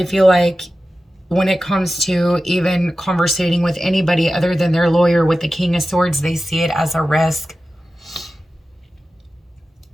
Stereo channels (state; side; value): normal; both; correlation 0.94